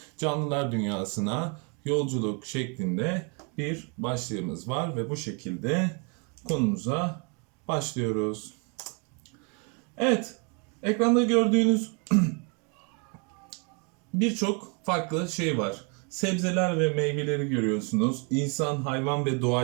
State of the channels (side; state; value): left; quieter; 35.2 dB